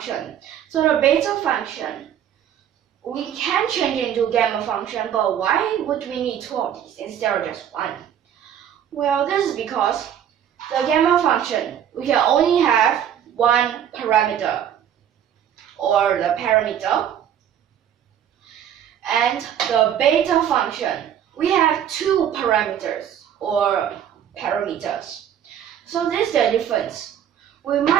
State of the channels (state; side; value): quieter; left; 9.7 dB